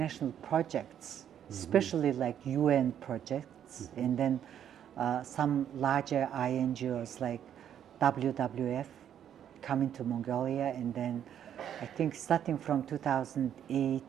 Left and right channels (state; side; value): quieter; left; 9.7 dB